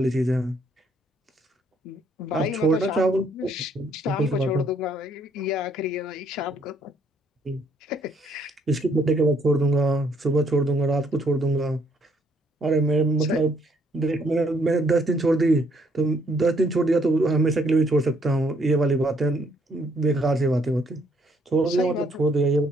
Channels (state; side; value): normal; both; correlation 0.68